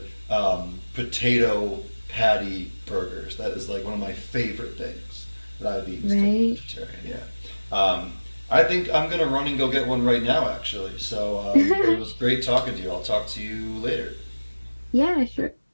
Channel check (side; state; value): both; inverted; correlation -1.00